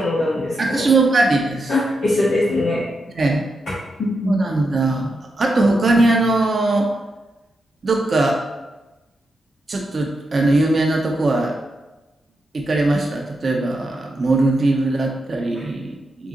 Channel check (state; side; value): normal; both; correlation 0.85